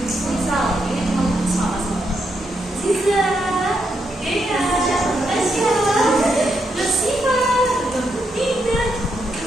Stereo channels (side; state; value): both; normal; correlation 0.80